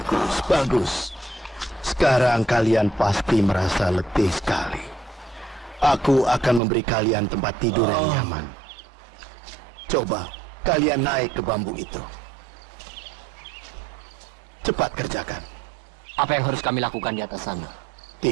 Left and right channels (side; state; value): left; drops out; at 6.6 s